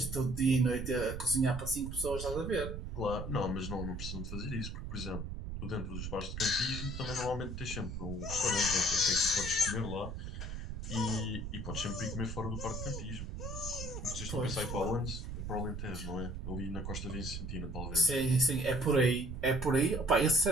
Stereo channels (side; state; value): right; noise; rumble, 6 dB below the sound